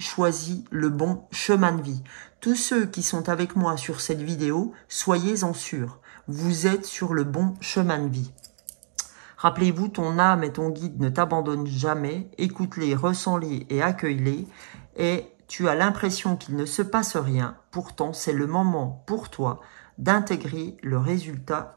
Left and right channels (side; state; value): left; silent; digital silence